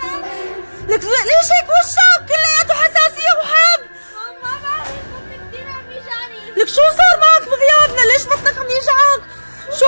لك ليش هيك وشك كلياته حساسية وحب؟ ما بعرف، بطني كثير عم يجعني. لك شو صار معك بغيابنا؟ ليش بطنك عم يجعك؟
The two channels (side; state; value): both; inverted; correlation -1.00